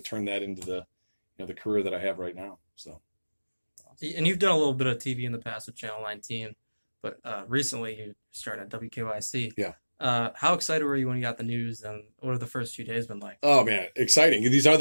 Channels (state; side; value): inverted; both; correlation -1.00